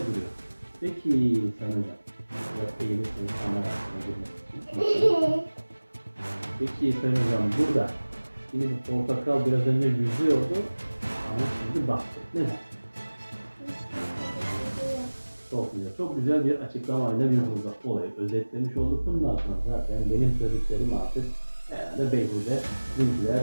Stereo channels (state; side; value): inverted; both; correlation -1.00